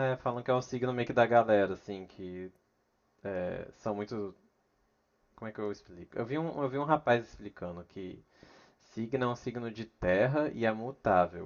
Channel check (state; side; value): identical; both; correlation 1.00